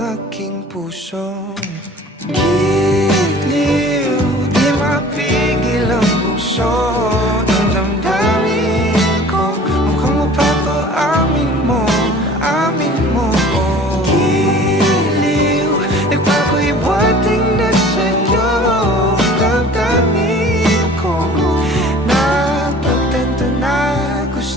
aking puso. Giliw, di mapigil ang puso ng damdamin ko. Mukhang mapapaamin mo, amin mo. Giliw, nagpapahiwating na sa'yo ang damdamin ko. Napagtanto na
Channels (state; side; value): normal; both; correlation 0.46